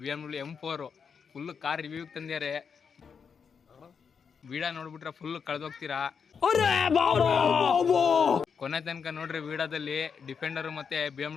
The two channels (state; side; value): quieter; right; 6.3 dB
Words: BMW M4 full car review ತಂದ್ಯಾರೆ. ವಿಡಿಯೋ ನೋಡ್ಬಿಟ್ರೆ ಫುಲ್ ಕಳೆದೋಗ್ತೀರಾ. ಕೊನೆ ತನಕ ನೋಡ್ರಿ ವಿಡಿಯೋದಲ್ಲಿ. ಡಿಫೆಂಡರ್ ಮತ್ತೆ